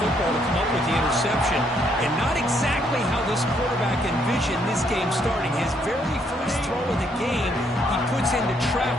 to come up with the interception. And not exactly how this quarterback envisioned this game starting. His very first throw of the game, he puts into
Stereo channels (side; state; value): both; normal; correlation 0.71